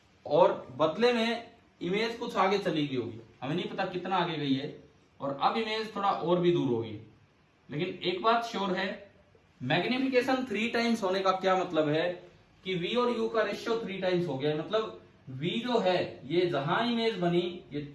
और बदले में इमेज कुछ आगे चली गई होगी, हमें नहीं पता कितना आगे गई है, और अब इमेज थोड़ा और भी दूर होगी। लेकिन एक बात श्योर है, मैग्निफिकेशन 3 टाइम्स होने का क्या मतलब है कि v और u का रेशियो 3 टाइम्स हो गया, मतलब v जो है ये जहां इमेज बनी ये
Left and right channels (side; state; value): both; identical; correlation 1.00